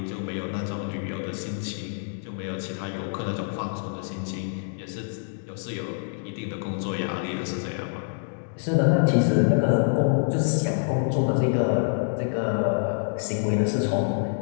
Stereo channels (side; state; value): right; silent; digital silence